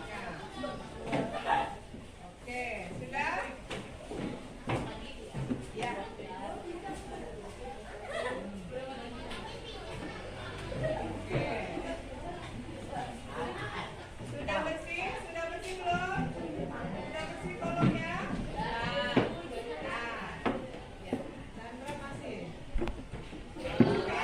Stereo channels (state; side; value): identical; both; correlation 1.00